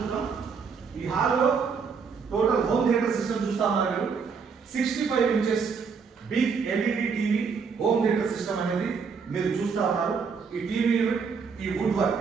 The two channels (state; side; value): quieter; left; 5.6 dB